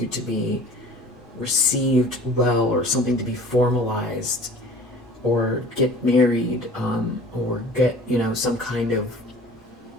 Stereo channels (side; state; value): both; normal; correlation 0.45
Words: to be received well, or something to be formalized, or get married, or get, you know, some kind of,